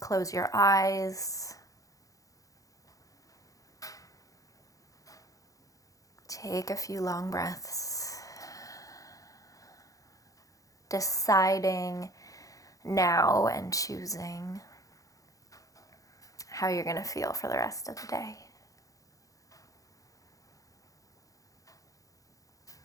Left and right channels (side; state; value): right; late; 0.17 ms